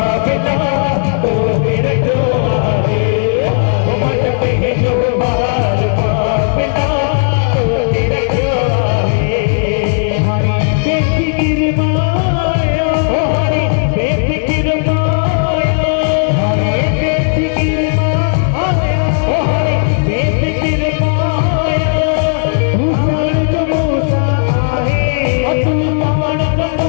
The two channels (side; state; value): right; silent; digital silence